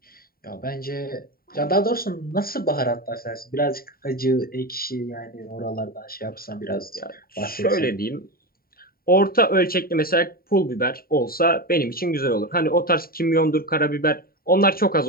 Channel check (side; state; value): right; late; 0.43 ms